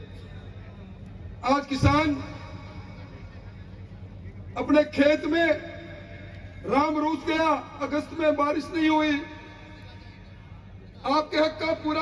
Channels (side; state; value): both; identical; correlation 1.00